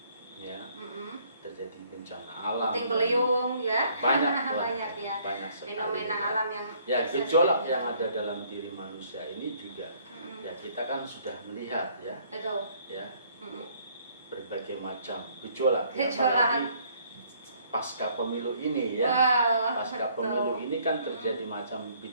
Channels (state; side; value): inverted; both; correlation -0.62